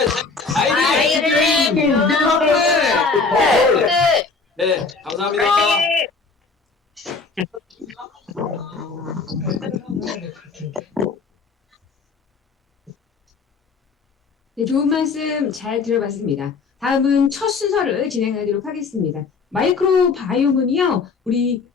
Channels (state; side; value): quieter; right; 4.5 dB